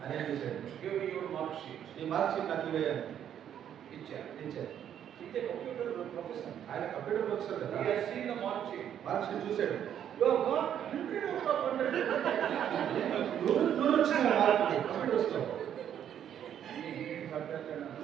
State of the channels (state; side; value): quieter; left; 9.7 dB